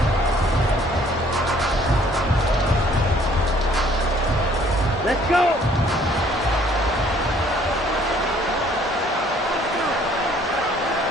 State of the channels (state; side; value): normal; both; correlation 0.60